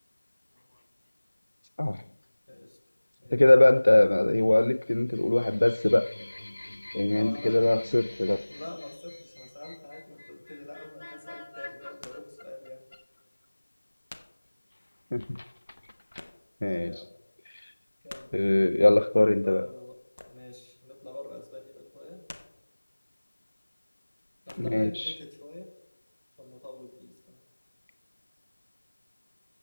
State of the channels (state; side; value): inverted; both; correlation -1.00